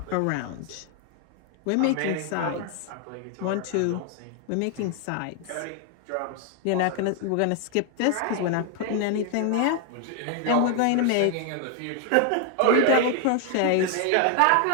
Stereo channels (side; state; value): both; different; correlation 0.00